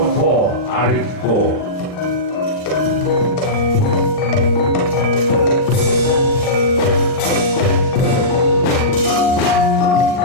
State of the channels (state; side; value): late; right; 39 ms